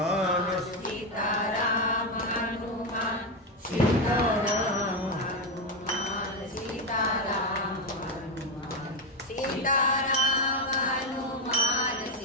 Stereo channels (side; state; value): both; normal; correlation 0.09